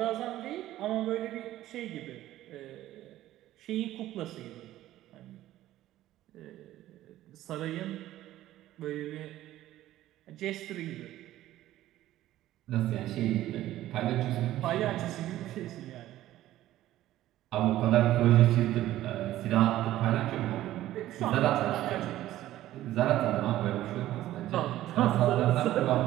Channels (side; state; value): left; quieter; 14.3 dB